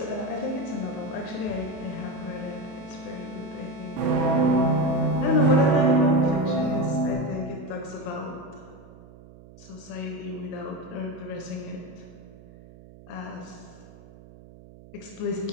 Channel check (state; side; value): noise; right; hum, 20 dB below the sound